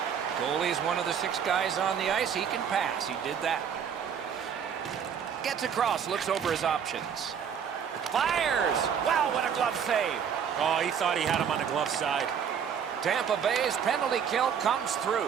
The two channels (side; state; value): left; quieter; 7.7 dB